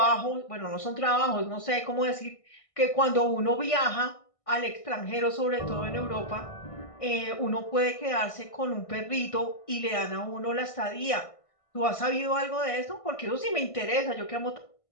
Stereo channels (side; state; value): right; late; 1.6 ms